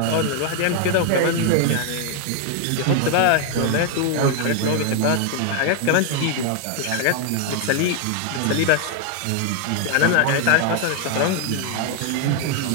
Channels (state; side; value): different; both; correlation 0.00